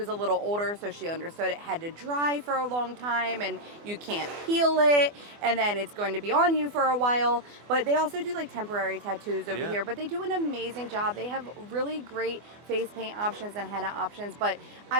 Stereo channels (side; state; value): left; late; 24 ms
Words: a little older, so she understood it had to dry for a long time, and you can't peel it, and then it's going to be on you for a while. But they also do like temporary tattoos over here, but they do an amazing job. They have really great face paint options and henna options, but